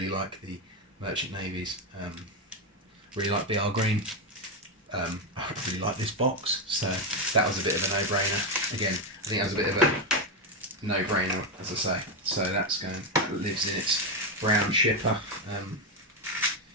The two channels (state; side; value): normal; both; correlation 0.08